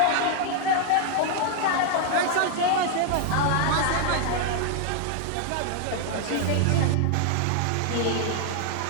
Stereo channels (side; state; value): both; different; correlation 0.00